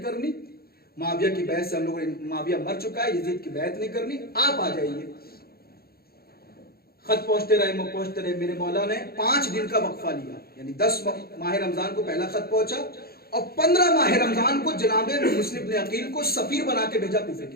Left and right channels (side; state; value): right; late; 0.45 ms